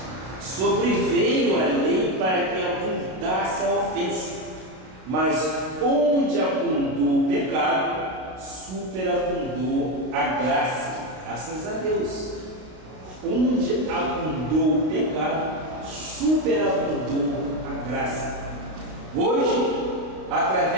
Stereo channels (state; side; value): late; left; 32 ms